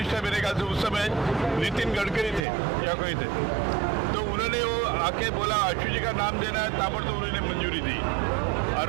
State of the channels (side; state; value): left; drops out; at 2.5 s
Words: मेरे ख्याल से उस समय नितिन गडकरी थे या कोई थे, तो उन्होंने वो आके बोला आशु जी का नाम देना है, ताबड़तोड़ उन्होंने मंजूरी दी और